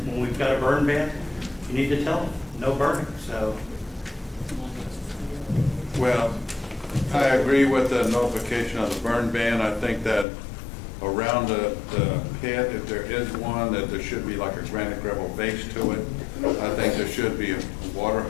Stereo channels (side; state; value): right; drops out; at 10.2 s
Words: when we've got a burn ban, you need to tell them no burning. So, Well, I agree with the notification of the burn ban. I think that around the pit, if there is one, that there should be like a granite gravel base to it. I think there should be a water